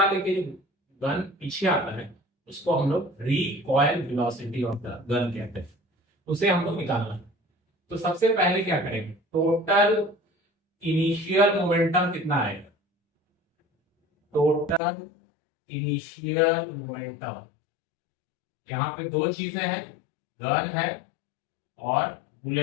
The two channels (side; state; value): right; drops out; at 14.8 s